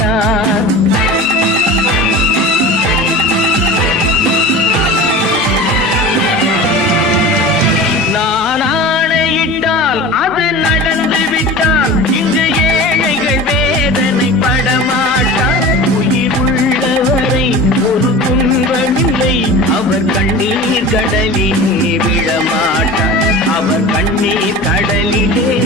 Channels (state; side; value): normal; both; correlation 0.35